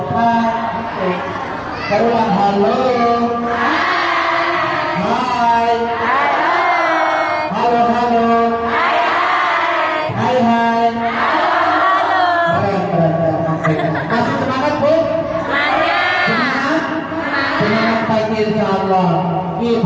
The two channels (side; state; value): both; identical; correlation 1.00